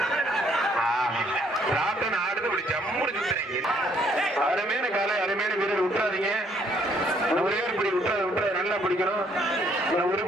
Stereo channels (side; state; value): both; normal; correlation 0.66